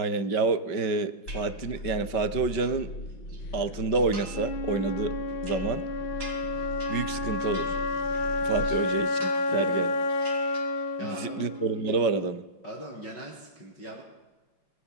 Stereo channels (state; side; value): late; right; 5.2 ms